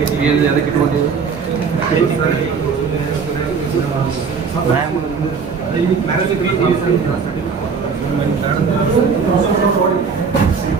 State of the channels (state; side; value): quieter; left; 5.6 dB